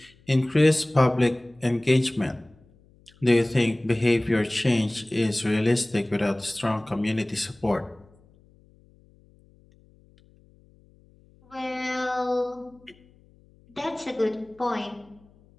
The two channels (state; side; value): noise; left; hum, 29 dB below the sound